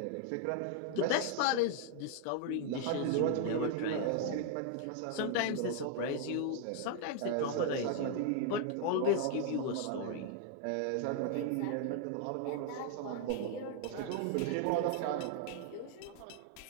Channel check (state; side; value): different; both; correlation 0.00